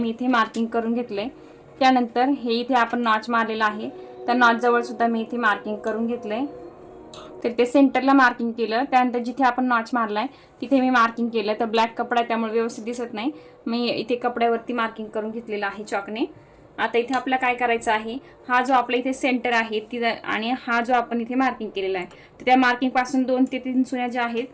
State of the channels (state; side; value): identical; both; correlation 1.00